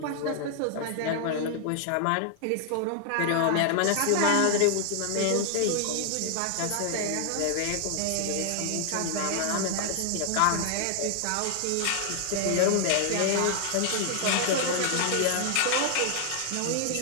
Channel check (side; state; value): both; different; correlation 0.00